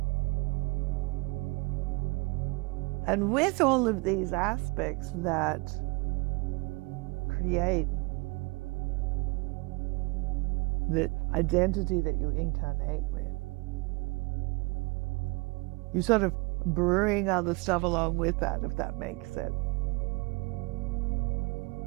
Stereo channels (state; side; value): quieter; left; 28.1 dB